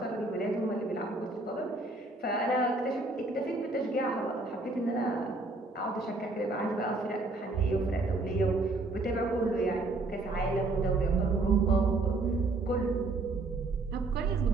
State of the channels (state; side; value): quieter; left; 3.1 dB